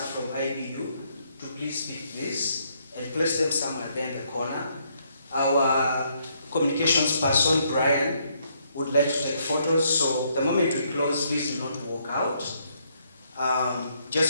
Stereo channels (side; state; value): both; inverted; correlation -0.72